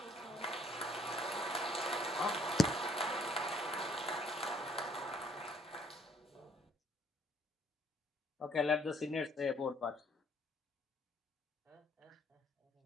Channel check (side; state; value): both; normal; correlation 0.65